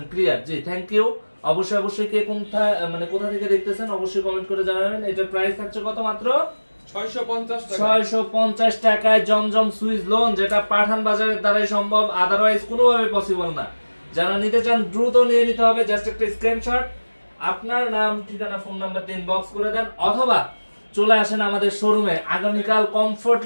ক্লিয়ার? জি, থ্যাংক ইউ। অবশ্যই কে কোথা থেকে দেখতেছেন অবশ্যই কমেন্ট করে জানাবেন। এটার প্রাইস থাকছে কত? মাত্র 650 টাকায় জমজম সুইচ লোন, যেটা পাঠান বাজারের দ্বারাই সম্ভব, আদারওয়াইজ কোনোভাবে পসিবল না। যারা নিতে চান দ্রুত নিয়ে নিতে হবে। জাস্ট একটা স্ক্রিনশট, আপনার নাম, ঠিকানা, ফোন নাম্বার দিয়ে ইনবক্স করে দেন, অথবা চলে আসেন আমাদের শোরুমে। আগামীকাল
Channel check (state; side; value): inverted; both; correlation -1.00